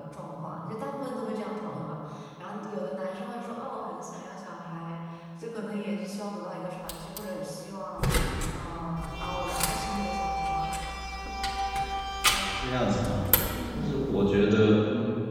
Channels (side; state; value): both; identical; correlation 1.00